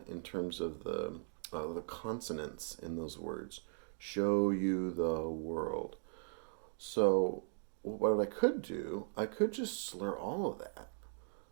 in terms of the consonants in those words. Show you the world. So what I could do, I could just slur all of that.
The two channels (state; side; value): silent; left; digital silence